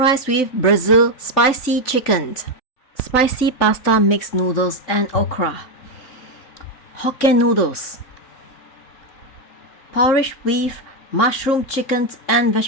with Brazil spicy chicken. Spicy pasta mixed noodles and okra. Hokkien noodles. Porridge with mushroom, chicken and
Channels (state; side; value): late; right; 3.9 ms